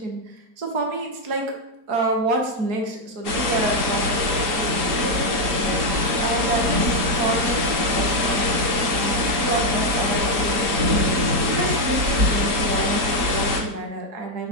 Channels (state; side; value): late; left; 3.9 ms